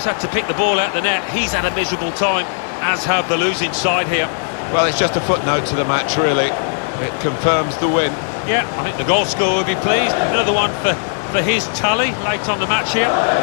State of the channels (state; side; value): silent; right; digital silence